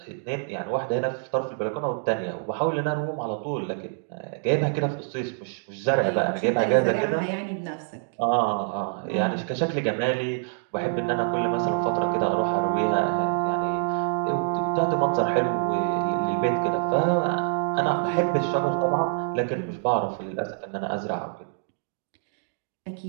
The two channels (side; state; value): left; silent; digital silence